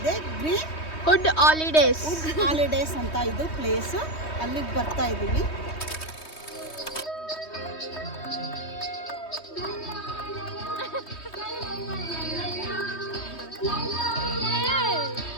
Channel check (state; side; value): late; right; 3.2 ms